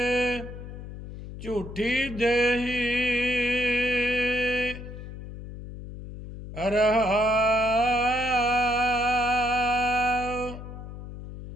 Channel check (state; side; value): noise; left; hum, 11 dB below the sound